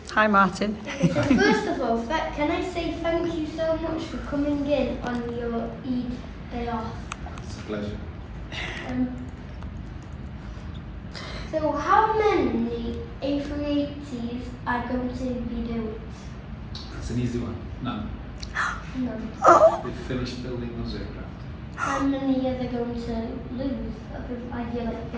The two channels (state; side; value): identical; both; correlation 1.00